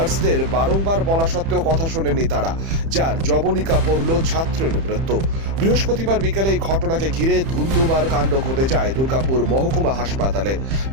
বারংবার বলা সত্ত্বেও কথা শোনেননি তারা, যার জবনিকা পড়ল ছাত্রের মৃত্যু। বৃহস্পতিবার বিকেলে এই ঘটনাকে ঘিরে ধুমধুমার কাণ্ড ঘটে যায় দুর্গাপুর মহকুমা হাসপাতালে।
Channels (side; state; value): left; late; 30 ms